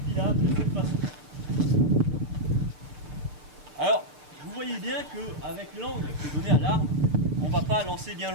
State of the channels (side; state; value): left; late; 6.7 ms